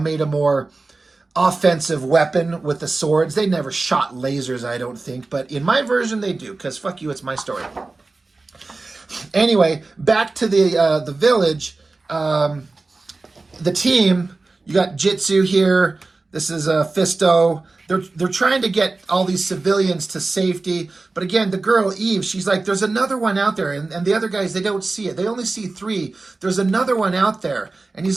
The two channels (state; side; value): quieter; left; 3.5 dB